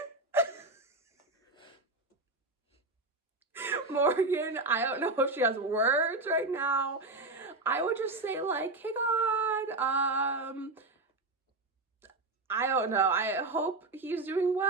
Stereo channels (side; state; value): left; quieter; 3.1 dB